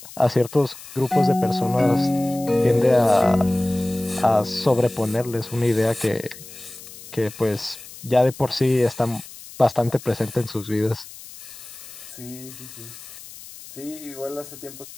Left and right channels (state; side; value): noise; left; hiss, 16 dB below the sound